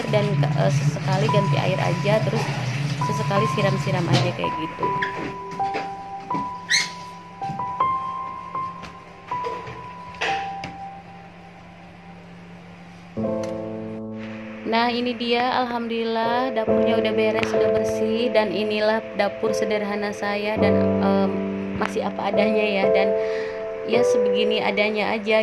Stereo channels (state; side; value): identical; both; correlation 1.00